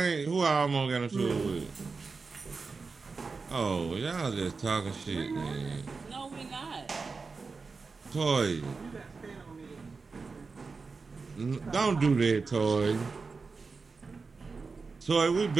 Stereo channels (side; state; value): left; quieter; 4.5 dB